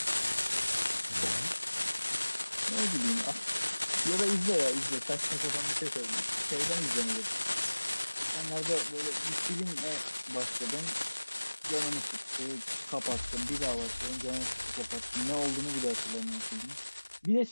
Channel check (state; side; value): inverted; both; correlation -1.00